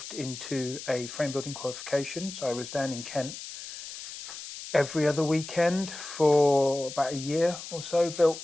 into a frame building qualification. So I was down in Kent every other weekend for about a year or so, built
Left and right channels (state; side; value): noise; left; hiss, 11 dB below the sound